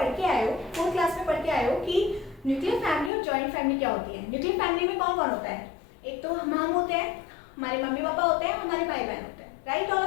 के आए हो, 4th क्लास में पढ़ के आए हो कि न्यूक्लियर फैमिली और जॉइंट फैमिली क्या होती है। न्यूक्लियर फैमिली में कौन कौन होता है? एक तो हम होते हैं, हमारे मम्मी पापा होते हैं, हमारे भाई बहन होते हैं, राइट ऑल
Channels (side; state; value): right; drops out; at 3.1 s